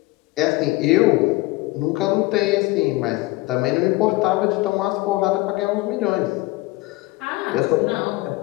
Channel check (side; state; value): right; quieter; 20.4 dB